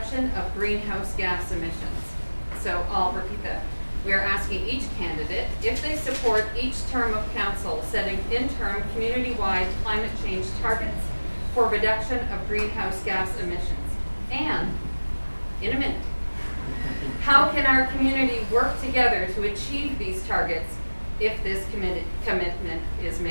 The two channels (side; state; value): both; inverted; correlation -1.00